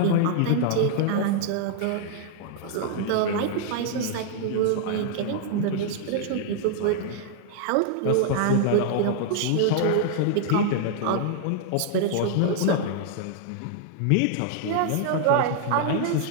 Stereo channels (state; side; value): different; both; correlation -0.01